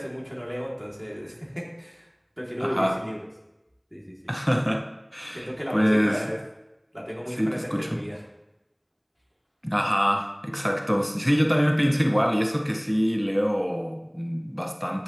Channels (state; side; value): identical; both; correlation 1.00